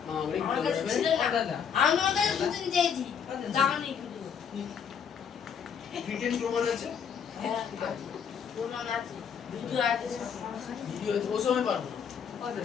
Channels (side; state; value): right; quieter; 7.4 dB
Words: মা বলে আমার কাছে ছিল ও না দাদা আমি ওর কাছে দুদিন চেয়েছি দাওনি কিন্তু রিটেন প্রমাণ আছে হ্যাঁ প্রমাণ আছে ভিডিও আছে ভিডিও ও সময় পারবো না